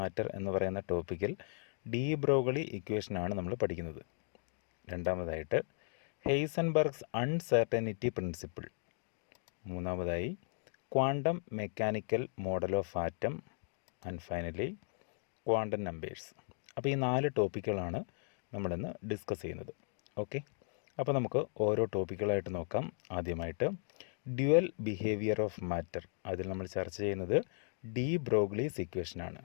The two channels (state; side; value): silent; right; 53 dB below the other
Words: എന്ന് പറയുന്ന ടോപ്പിക്കിൽ ഡി-ബ്രോഗ്ലി ഇക്വേഷനാണ് നമ്മൾ പഠിക്കുന്നത്. രണ്ടാമതായിട്ട് ഹെയ്സൻബർഗ്സ് അൺസെർട്ടനിറ്റി പ്രിൻസിപ്പിൾ. മൂന്നാമതായി quantum mechanical model of atom. And finally quantum numbers. അപ്പോൾ ഈ 4 ടോപ്പിക്കുകളാണ് നമ്മളിന്ന് ഡിസ്കസ് ചെയ്യുന്നത്. ഓക്കെ, അപ്പോൾ നമുക്ക് ഓരോ ടോപ്പിക്കുകളായിട്ട് നോക്കാം. ആദ്യമായിട്ട് ഡ്യുവൽ ബിഹേവിയർ ഓഫ് മാറ്റർ. അതിൽ നമ്മൾ ചർച്ച ചെയ്യുന്നത് ഡി-ബ്രോഗ്ലീസ് ഇക്വേഷനാണ്.